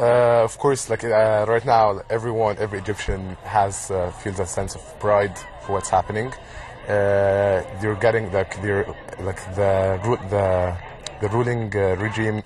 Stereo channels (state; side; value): identical; both; correlation 1.00